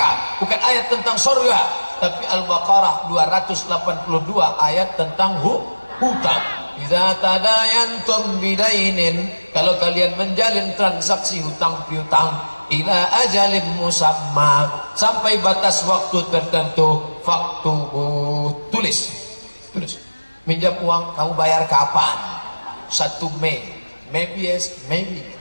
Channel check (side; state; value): both; inverted; correlation -1.00